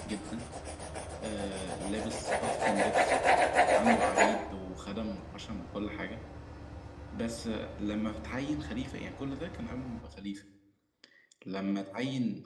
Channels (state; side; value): identical; both; correlation 1.00